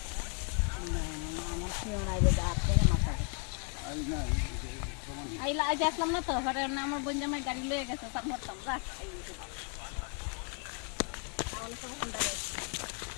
আইলা আজ আসলাম না তো পরে আমার বোন জামাই গাড়ি লয়ে গেছে তার মরতাম যা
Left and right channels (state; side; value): quieter; right; 37.9 dB